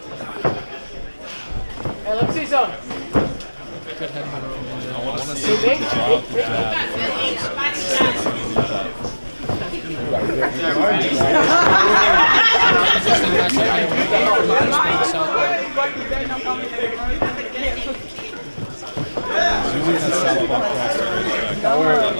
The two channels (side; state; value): both; inverted; correlation -1.00